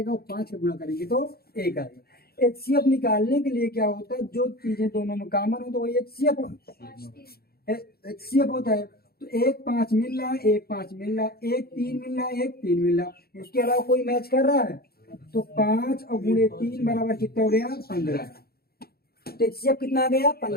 और 5 का गुणा करेंगे तो 1 आएगा। HCF निकालने के लिए क्या होता है, जो चीजें दोनों में कॉमन हो तो वही HCF होता है। तो 1 5 मिल रहा है, 1 5 मिल रहा है, 1 3 मिल रहा है, 1 3 मिल रहा है, उसके अलावा कोई मैच कर रहा है, तो 5 और गुणे 3 बराबर कितना हो गया 15। तो HCF कितना आ गया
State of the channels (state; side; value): late; right; 0.45 ms